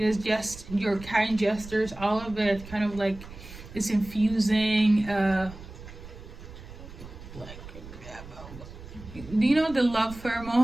just your kind gestures, all of it kind of like it's infusing. Do you know the love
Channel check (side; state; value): right; noise; rumble, 15 dB below the sound